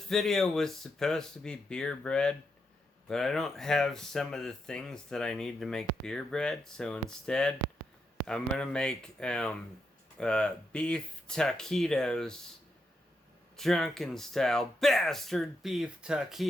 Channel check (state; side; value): normal; both; correlation 0.83